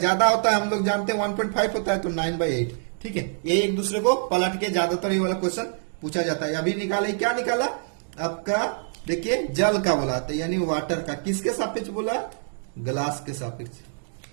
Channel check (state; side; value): silent; left; digital silence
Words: होता है, हम लोग जानते हैं 1.5 होता है, तो 9/8। ठीक है, ये एक दूसरे को पलट के ज्यादातर ये वाला क्वेश्चन पूछा जाता है। अभी निकाले क्या निकाला आपका, देखिए जल का बोला तो यानी वाटर का, किसके सापेक्ष बोला ग्लास के सापेक्ष।